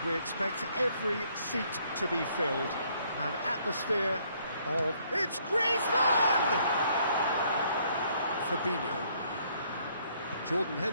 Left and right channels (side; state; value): both; inverted; correlation -0.66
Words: we expect every seat to be filled. An atmosphere of... It's Griezmann! Fabinho. Jordan